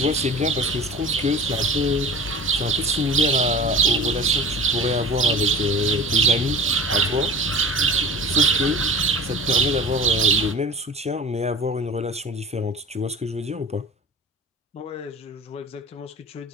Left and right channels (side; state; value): both; normal; correlation 0.38